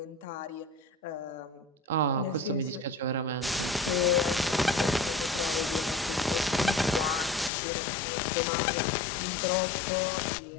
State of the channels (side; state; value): right; drops out; at 7.5 s